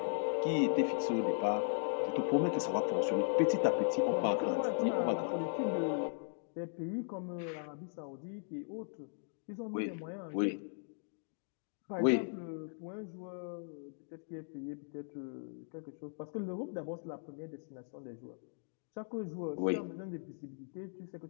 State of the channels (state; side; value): silent; right; digital silence